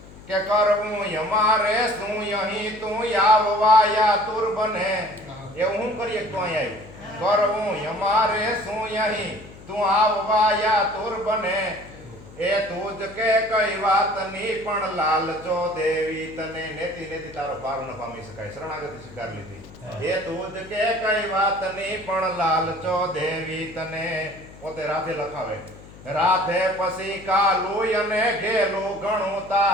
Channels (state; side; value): noise; left; hum, 19 dB below the sound